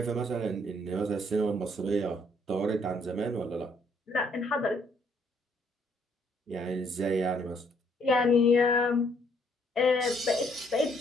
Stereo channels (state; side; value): normal; both; correlation 0.68